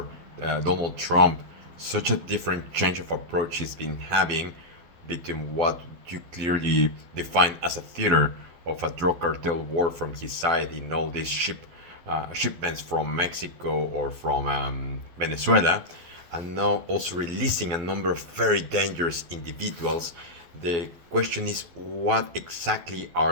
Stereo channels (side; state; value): left; late; 12 ms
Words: Donald Trump. Such a different change of approach he's been having between what you clearly define as a theater of a drug cartel war from his side in all these shipments from Mexico or from Venezuela, and now also releasing a number of very dangerous individuals. The question is, what exactly